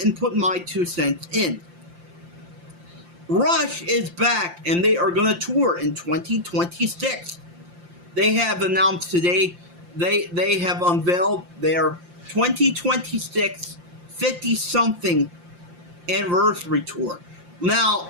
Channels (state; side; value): late; left; 5.7 ms